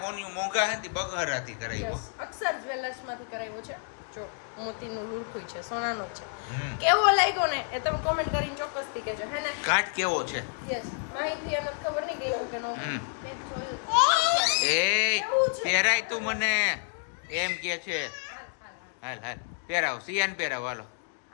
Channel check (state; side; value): silent; right; 58 dB below the other